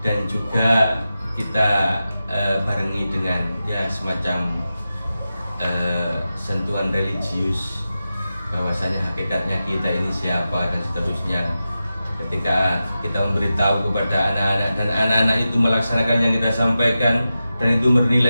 dan juga kita barengi dengan ya semacam sentuhan religius, bahwasanya hakikatnya kita ini siapa dan seterusnya. Ketika kita memberitahu kepada anak-anak dan anak-anak itu melaksanakan yang kita sampaikan dan itu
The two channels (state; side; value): inverted; both; correlation -0.92